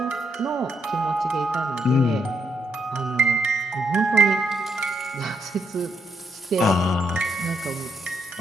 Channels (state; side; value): normal; both; correlation 0.77